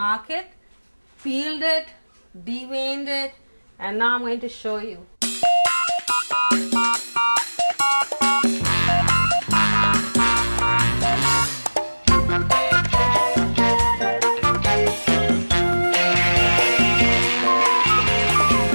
peeled it, deveined it, and now I'm going to show you.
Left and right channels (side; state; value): both; inverted; correlation -1.00